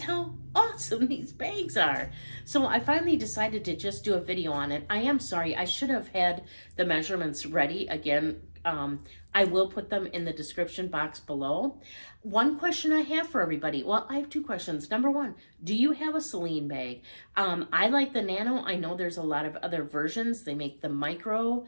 how awesome these bags are. So I finally decided to just do a video on it. I am sorry, I should have had the measurements ready. Again, I will put them in the description box below. One question I have for everybody, well, I have two questions. Number one, do you have a Celine bag? I like the Nano. I know there's a lot of other versions. They make the Micro.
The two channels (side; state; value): both; inverted; correlation -1.00